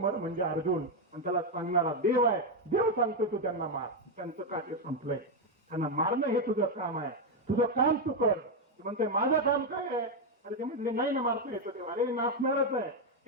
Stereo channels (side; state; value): both; normal; correlation 0.04